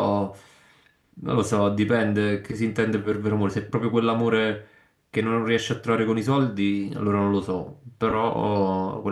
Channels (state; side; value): identical; both; correlation 1.00